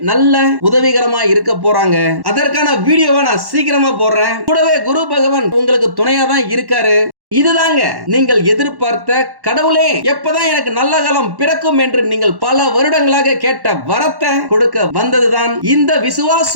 நல்ல உதவிகரமா இருக்க போறாங்க. அதற்கான வீடியோவை நான் சீக்கிரமா போடுறேன். கூடவே குரு பகவான் உங்களுக்கு துணையா தான் இருக்காரு. இதுதாங்க நீங்கள் எதிர்பார்த்த கடவுளே எப்பதான் எனக்கு நல்ல காலம் பிறக்கும் என்று நீங்கள் பல வருடங்களாக கேட்ட வரத்தை கொடுக்க வந்ததுதான் இந்த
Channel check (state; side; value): late; left; 1.1 ms